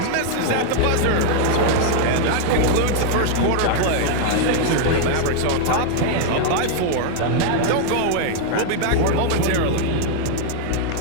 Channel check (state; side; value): different; both; correlation 0.00